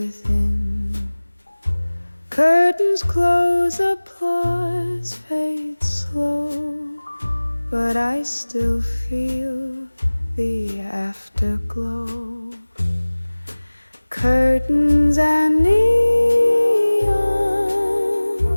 Curtains close, applause fades slow, but I still feel the afterglow. Curtains and neon,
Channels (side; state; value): both; inverted; correlation -1.00